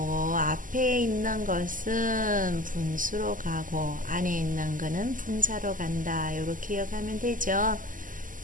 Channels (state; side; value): late; left; 0.38 ms